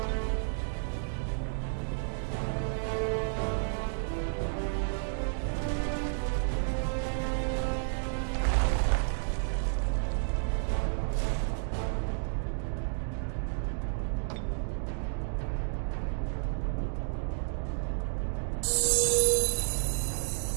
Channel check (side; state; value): left; silent; digital silence